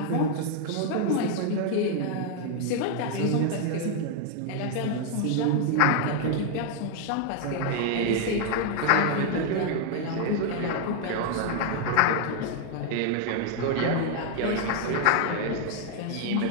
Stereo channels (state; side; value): different; both; correlation 0.00